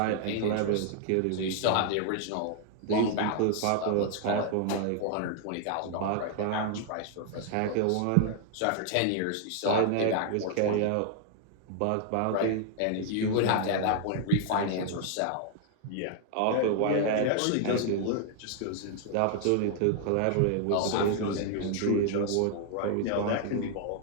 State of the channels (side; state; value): both; different; correlation 0.00